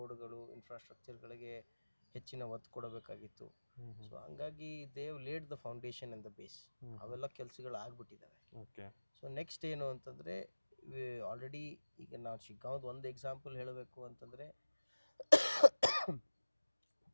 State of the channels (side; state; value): both; inverted; correlation -1.00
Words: ಇನ್ಫ್ರಾಸ್ಟ್ರಕ್ಚರ್ಗಳಿಗೆ ಹೆಚ್ಚಿನ ಒತ್ತು ಕೊಡಬೇಕಾಗಿತ್ತು. ಸೊ ಹಂಗಾಗಿ they have laid the foundation and the base. ಅವೆಲ್ಲ ಕೆಲಸಗಳು ಆಗ್ಬಿಟ್ಟಿದ್ದಾವೆ. ಓಕೆ. ಸೊ ನೆಕ್ಸ್ಟ್ ಏನು ಅಂತಂದರೆ, ಆಲ್ರೆಡಿ ಈಗ ನಾವು ಶಿಗ್ಗಾಂವ್ದು ಒಂದು ಎಕ್ಸಾಂಪಲ್ ಹೇಳಬೇಕು ಅಂತಂದರೆ,